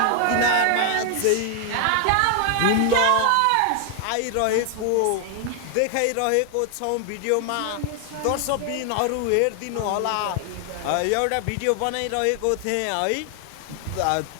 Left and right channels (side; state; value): both; different; correlation 0.00